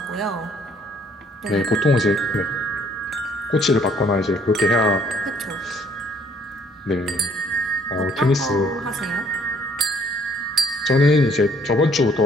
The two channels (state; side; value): normal; both; correlation 0.62